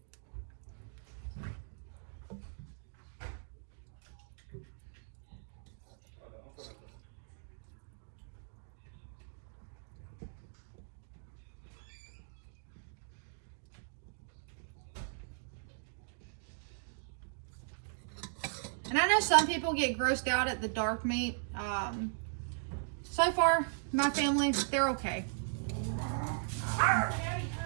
And I know some people get grossed out at the dark meat. So far, my family, they're okay.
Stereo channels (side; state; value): left; silent; digital silence